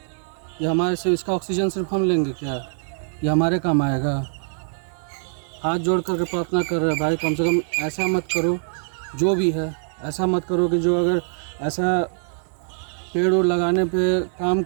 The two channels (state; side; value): silent; left; digital silence